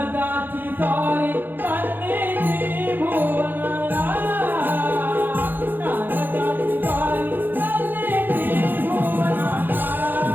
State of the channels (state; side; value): late; left; 0.092 ms